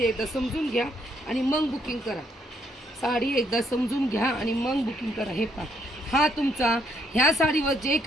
एकदा समजून घ्या आणि मग बुकिंग करा. साडी एकदा समजून घ्या आणि मग बुकिंग करा. हे पहा, हा तुमचा ह्या साडीवर जे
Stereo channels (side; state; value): both; normal; correlation 0.72